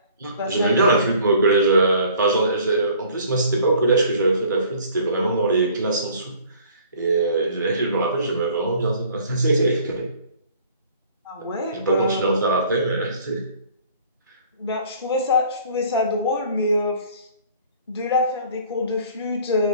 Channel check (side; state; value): both; inverted; correlation -0.53